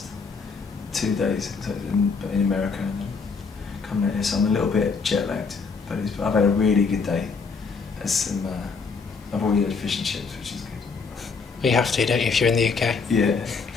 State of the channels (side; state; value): right; quieter; 4.9 dB